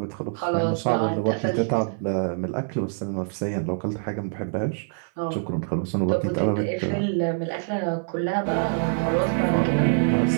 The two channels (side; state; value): left; silent; 59 dB below the other